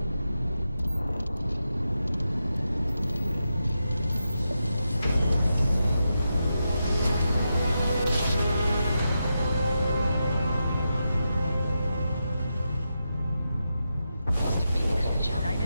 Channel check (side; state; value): both; inverted; correlation -0.87